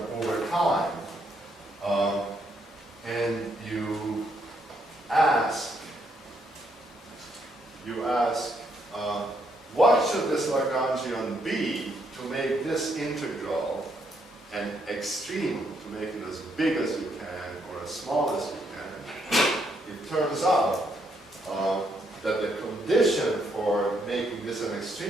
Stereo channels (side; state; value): both; normal; correlation 0.74